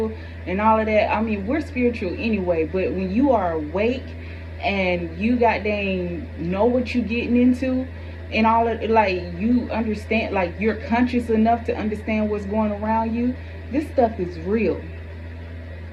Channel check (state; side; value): identical; both; correlation 1.00